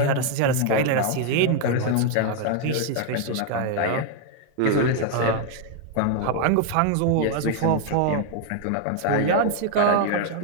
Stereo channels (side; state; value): both; different; correlation 0.00